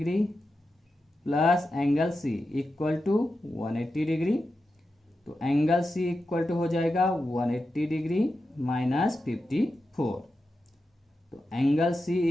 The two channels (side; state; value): both; normal; correlation 0.90